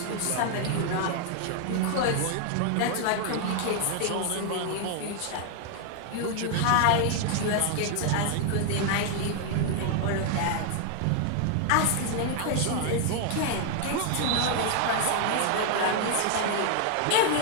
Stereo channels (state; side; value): different; both; correlation 0.00